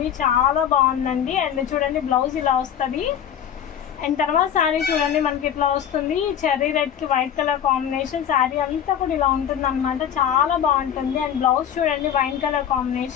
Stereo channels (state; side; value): quieter; right; 9.2 dB